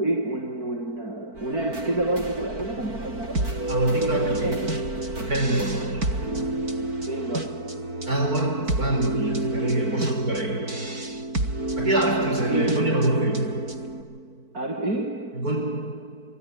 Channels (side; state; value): left; late; 4.5 ms